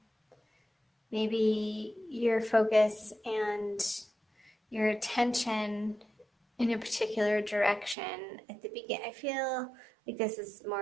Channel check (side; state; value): left; drops out; at 8.0 s